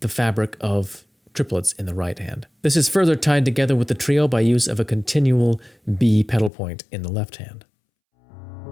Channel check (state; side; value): drops out; right; at 6.5 s